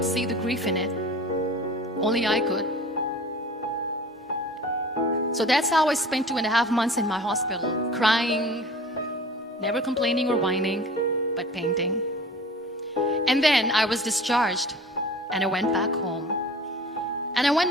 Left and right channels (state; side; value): normal; both; correlation 0.42